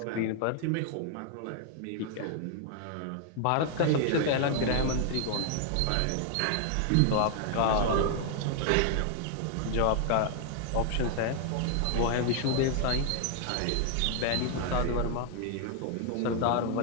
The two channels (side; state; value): both; different; correlation 0.00